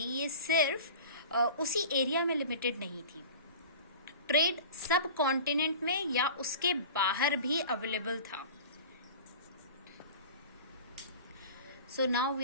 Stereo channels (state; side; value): inverted; both; correlation -0.38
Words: ये सिर्फ उसी एरिया में लिमिटेड नहीं थी। ट्रेड सब कॉन्टिनेंट में या उसके बाहर भी अवेलेबल था। So now